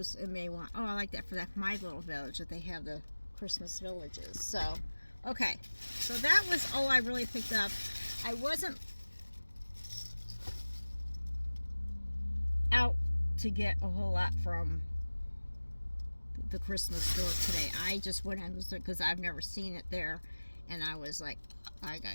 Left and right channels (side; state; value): both; inverted; correlation -1.00